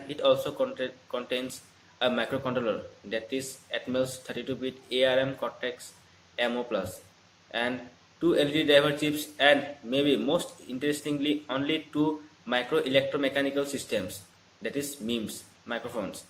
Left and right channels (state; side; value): identical; both; correlation 1.00